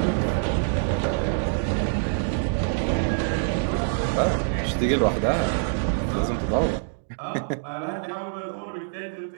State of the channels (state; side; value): silent; left; digital silence